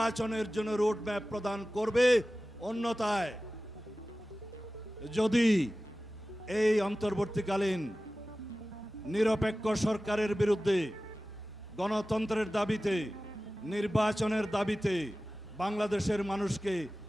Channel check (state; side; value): normal; both; correlation 0.96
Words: জন্য রোড ম্যাপ প্রদান করবে। অন্যথায় যদি এই অন্তর্বর্তীকালীন নিরপেক্ষ সরকারের বিরুদ্ধে গণতন্ত্রের দাবিতে, নির্বাচনের দাবিতে বাংলাদেশের মানুষকে